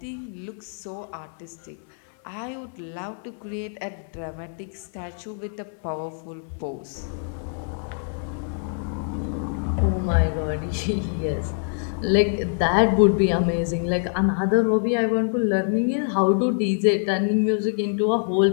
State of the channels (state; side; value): silent; right; 62 dB below the other